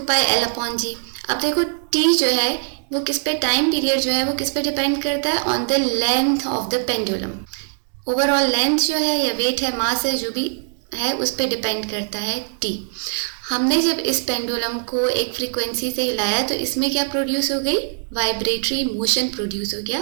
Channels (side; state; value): left; silent; digital silence